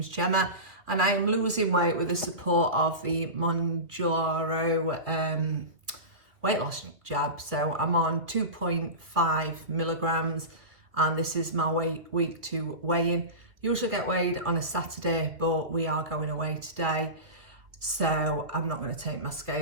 Gemma and I am losing weight with the support of the Mounjaro weight loss jab. So I'm on 2.5 milligrams and this is my week 2 weigh-in. Usually get weighed on a Saturday, but we are going away today. So I'm not going to take my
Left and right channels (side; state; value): left; late; 2.5 ms